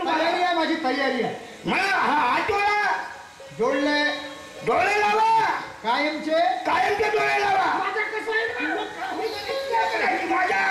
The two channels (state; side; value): identical; both; correlation 1.00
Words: माझी तयारी आहे. मला हा हात डोळा जोडले, डोळे लावा, कायमचे डोळे लावा. माझं कसं आहे माझ्या